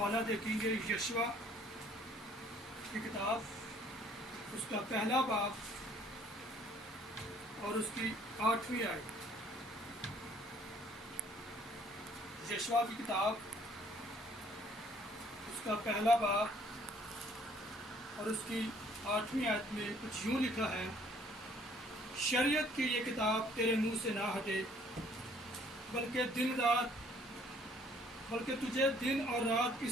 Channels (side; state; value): both; normal; correlation 0.60